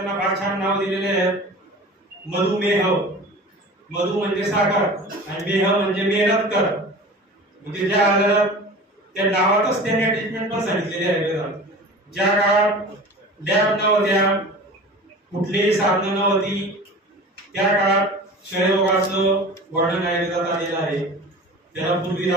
फार छान नाव दिलेले आहेत. मधुमेह, मधु म्हणजे साखर आणि मेह म्हणजे मेहनत कर. म्हणजे ज्या आजारात त्या नावातच त्यांनी ट्रीटमेंट पण सांगितलेली आहे आयुर्वेदात. ज्या काळात लॅब नव्हत्या, कुठलीही साधनं नव्हती, त्या काळात क्षयरोगाचं वर्णन आयुर्वेदात आलेलं आहे. त्याला पूर्वी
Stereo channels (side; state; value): both; normal; correlation 0.37